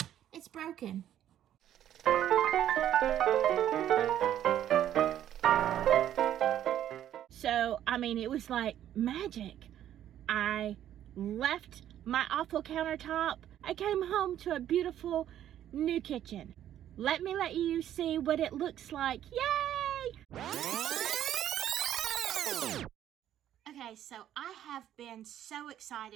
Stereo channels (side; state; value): left; quieter; 11.2 dB